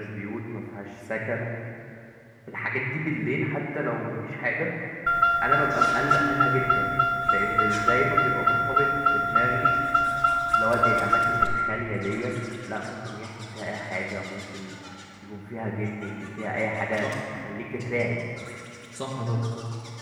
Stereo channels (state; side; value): identical; both; correlation 1.00